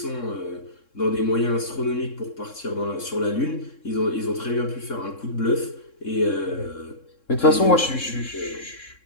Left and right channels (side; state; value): right; late; 3.7 ms